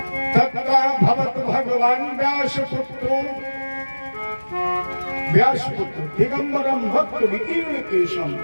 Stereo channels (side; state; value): both; inverted; correlation -1.00